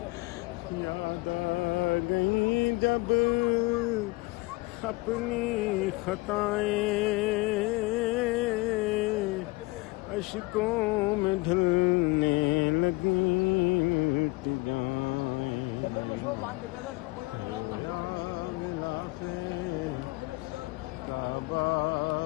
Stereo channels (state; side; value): quieter; right; 24.2 dB